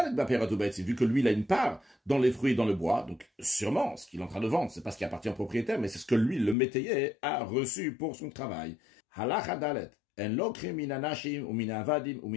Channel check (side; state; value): right; drops out; at 6.6 s